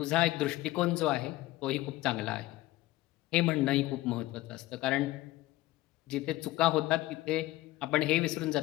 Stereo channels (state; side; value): quieter; right; 17.4 dB